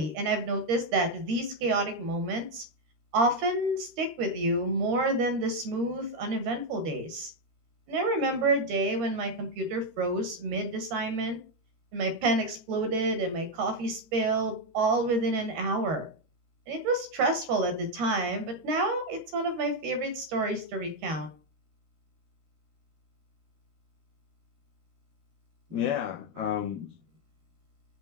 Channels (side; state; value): left; late; 13 ms